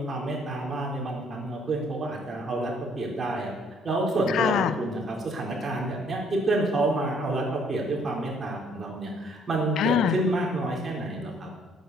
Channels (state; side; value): normal; both; correlation 0.63